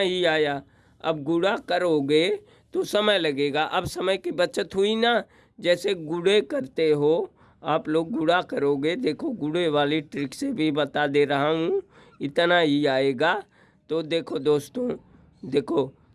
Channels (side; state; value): both; identical; correlation 1.00